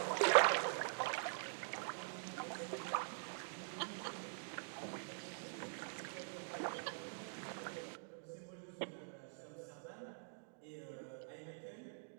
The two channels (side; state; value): left; silent; digital silence